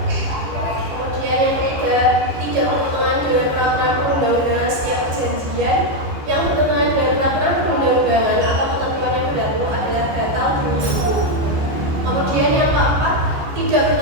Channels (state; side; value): late; left; 14 ms